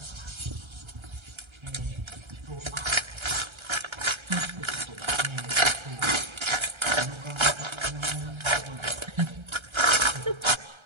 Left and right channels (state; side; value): late; left; 1.3 ms